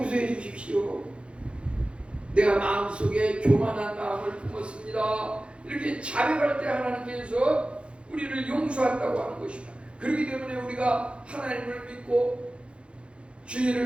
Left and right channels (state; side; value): late; left; 0.058 ms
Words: 주십시오. 내가 마음속에 교만한 마음을 품었습니다. 이렇게 자백할 때 하나님께서 우리를 용서한다고 하는 것입니다. 그렇기 때문에 우리가 하나님을 믿고